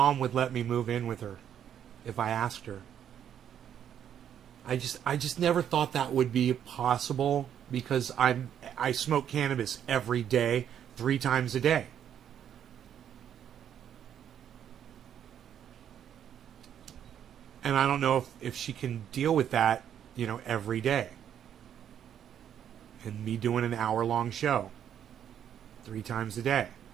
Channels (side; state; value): left; quieter; 9.4 dB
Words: would let me move in with her if I asked her. I just never thought that would be possible because I smoke cannabis every day, 3 times a day. And I don't know if she can deal with that, you know, every day. And me doing an hour-long show 3 times a day.